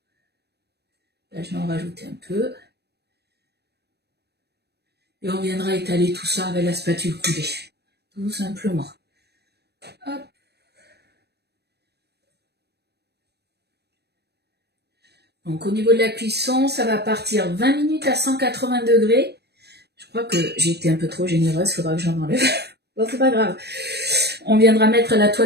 Là, je vais en rajouter un peu. Et on viendra étaler tout ça avec la spatule coudée. Tout simplement. Hop. Donc au niveau de la cuisson, ça va partir 20 minutes à 180 degrés. Je crois que j'ai été un peu trop généreuse, il faudra que j'en enlève. Bon, c'est pas grave. On viendra mettre la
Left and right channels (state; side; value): late; left; 0.48 ms